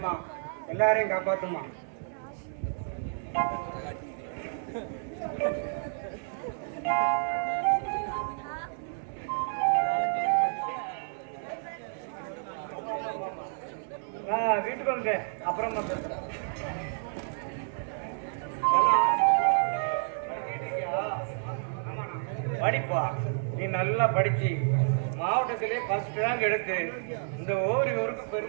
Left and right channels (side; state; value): left; silent; 58 dB below the other